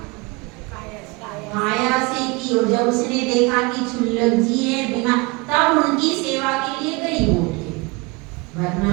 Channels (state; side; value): quieter; left; 26.8 dB